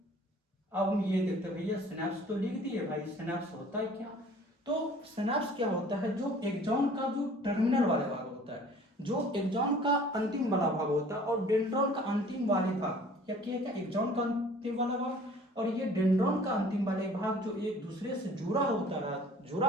अब हम ये देखते हैं भैया, सिनेप्स तो लिख दिए भाई, सिनेप्स होता है क्या? तो सिनेप्स क्या होता है? जो एक्सॉन का जो टर्मिनल वाला भाग होता है, जो एक्सॉन का अंतिम वाला भाग होता है, और डेंड्रॉन का अंतिम वाले भाग, या क्या एक्सॉन का अंतिम वाला भाग और ये डेंड्रॉन का अंतिम वाले भाग जो एक दूसरे से जुड़ा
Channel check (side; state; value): both; normal; correlation 0.50